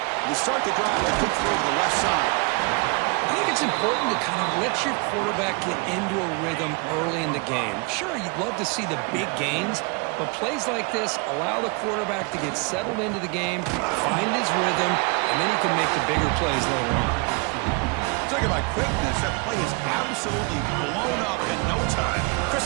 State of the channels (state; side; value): quieter; left; 31.2 dB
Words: To start the drive, they kick through to the left side. I think it's important to kind of let your quarterback get into a rhythm early in the game. Sure, you'd love to see the big gains, but plays like this allow the quarterback to get settled into the game, find his rhythm, and then he can make the bigger plays later on. Talk about quickness. That play is absolutely blown up in no time.